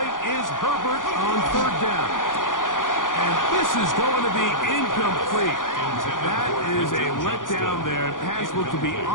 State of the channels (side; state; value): right; late; 0.89 ms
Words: is Herbert on third down. And this is going to be incomplete. That is a letdown there. Pass looked to be